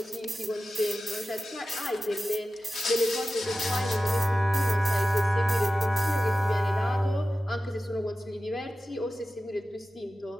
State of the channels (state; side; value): normal; both; correlation 0.95